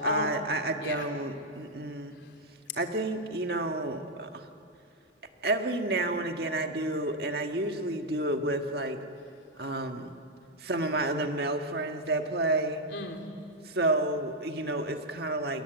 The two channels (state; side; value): normal; both; correlation 0.01